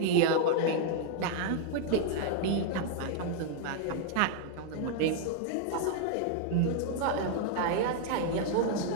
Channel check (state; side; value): different; both; correlation 0.00